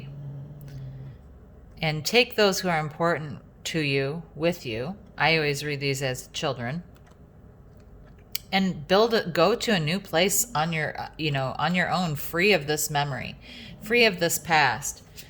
and take those who are important to you with you. I always read these as children. And go to a new place on your, you know, on your own, free of this memory, free of this past,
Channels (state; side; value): identical; both; correlation 1.00